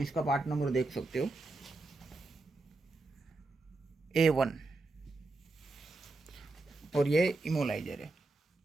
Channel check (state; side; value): quieter; left; 3.3 dB